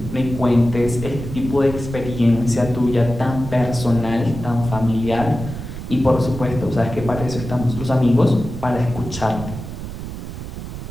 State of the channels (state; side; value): noise; right; rumble, 9 dB below the sound